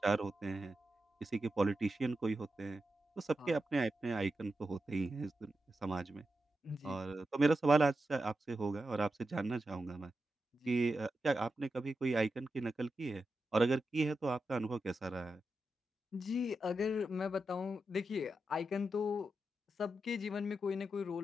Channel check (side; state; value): both; normal; correlation 0.89